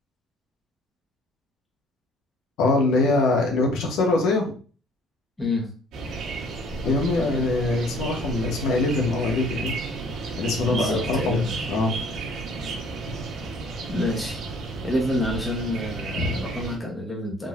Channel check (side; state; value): both; normal; correlation 0.55